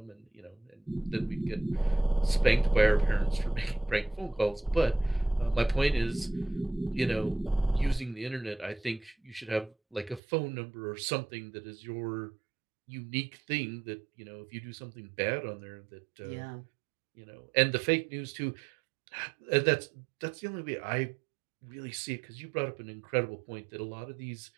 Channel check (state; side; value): drops out; left; at 10.2 s